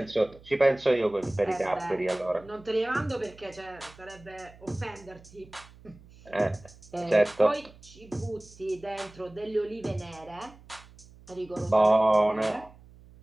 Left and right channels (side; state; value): right; noise; hum, 23 dB below the sound